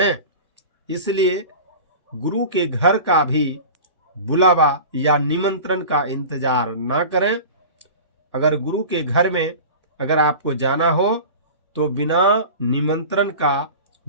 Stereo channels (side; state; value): both; inverted; correlation -0.35